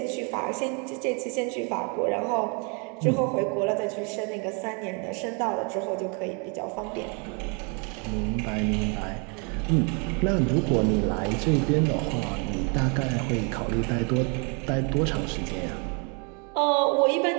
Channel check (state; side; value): quieter; left; 35.1 dB